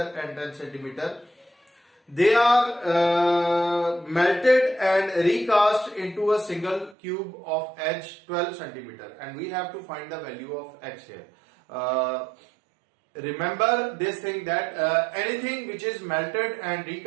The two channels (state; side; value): drops out; left; at 7.0 s